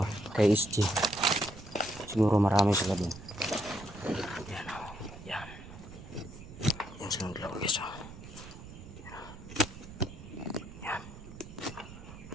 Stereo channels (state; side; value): noise; right; rumble, 15 dB below the sound